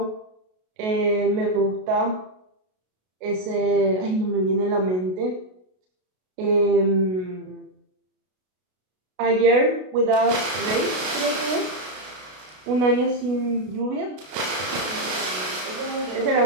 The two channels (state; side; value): late; left; 33 ms